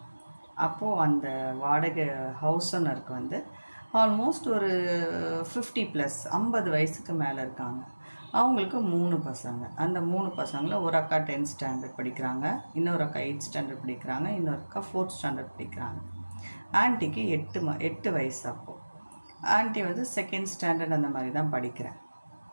அப்போது அந்த வாடகை ஹவுஸ் ஓனருக்கு ஆல்மோஸ்ட் ஒரு 50+, 50 வயசுக்கு மேலே இருக்காங்க. அவங்களுக்கு 3 பசங்க. அந்த 3 பசங்களில் ஒரு அக்கா 10th ஸ்டாண்டர்ட் படிக்கிறாங்க, இன்னொரு அக்கா 8th ஸ்டாண்டர்ட் படிக்கிறாங்க, இன்னொரு அக்கா 4th ஸ்டாண்டர்ட் படிக்கிறாங்க. ஆன்ட்டிக்கு 8 வயசு. அப்போது ஆன்ட்டி 2nd ஸ்டாண்டர்ட் அந்த மாதிரி தான் படிக்கிறேன்.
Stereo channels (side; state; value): both; inverted; correlation -1.00